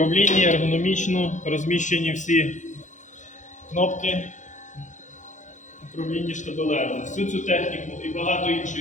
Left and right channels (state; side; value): late; right; 0.36 ms